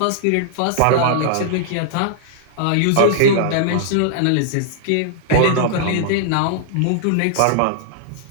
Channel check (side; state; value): both; different; correlation -0.01